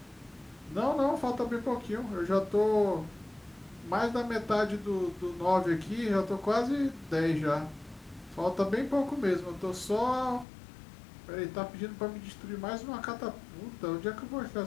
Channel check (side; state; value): right; drops out; at 10.5 s